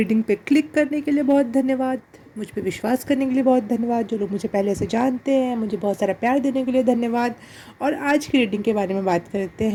पे क्लिक करने के लिए बहुत धन्यवाद। मुझ पे विश्वास करने के लिए बहुत धन्यवाद। जो लोग मुझे पहले से जानते हैं, मुझे बहुत सारा प्यार देने के लिए धन्यवाद। और आज की रीडिंग के बारे में बात करते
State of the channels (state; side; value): identical; both; correlation 1.00